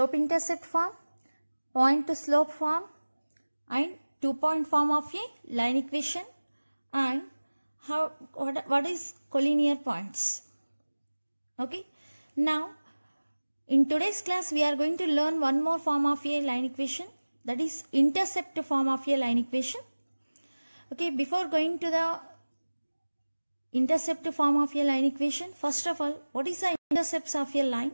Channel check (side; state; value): both; inverted; correlation -1.00